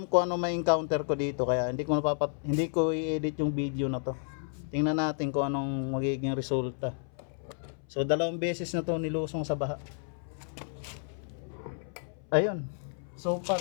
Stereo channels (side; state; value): right; silent; 57 dB below the other